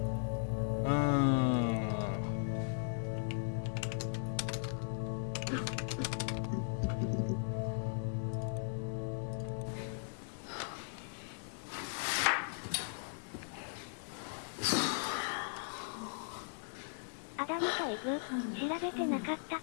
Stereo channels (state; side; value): silent; right; digital silence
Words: うーん。アダムとイブ、調べてなかった